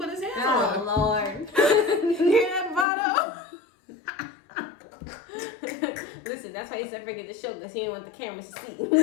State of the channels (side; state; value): right; drops out; at 2.9 s